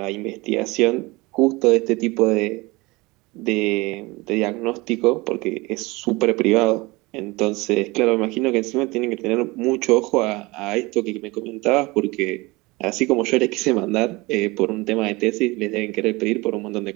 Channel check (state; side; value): quieter; left; 23.2 dB